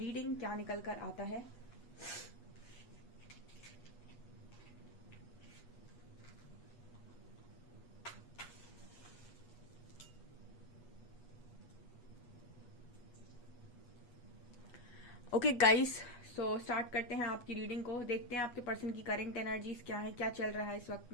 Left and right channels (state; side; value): late; right; 8.2 ms